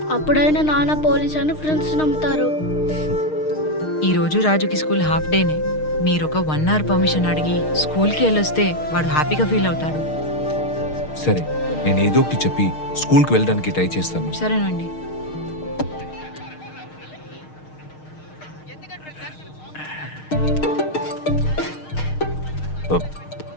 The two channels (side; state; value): right; late; 6.5 ms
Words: అప్పుడైనా నాన్న పోలీస్ అని ఫ్రెండ్స్ నమ్ముతారు. ఈ రోజు రాజుకి స్కూల్ హాఫ్ డేనే. మీరు ఒక 1 hour పర్మిషన్ అడిగి స్కూల్కి వెళ్ళొస్తే వాడు హ్యాపీగా ఫీల్ అవుతాడు. సరే, నేను ఏదో ఒకటి చెప్పి స్కూల్కి వెళ్ళడానికి ట్రై చేస్తాను. సరేనండి.